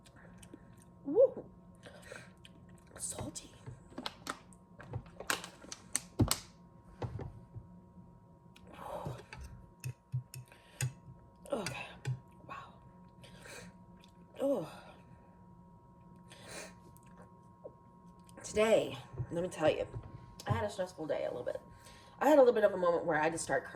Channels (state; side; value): identical; both; correlation 1.00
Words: Woo! Salty. Okay. Wow. Oh. Today, let me tell you, I had a stressful day a little bit. I had a little bit of a moment where I just started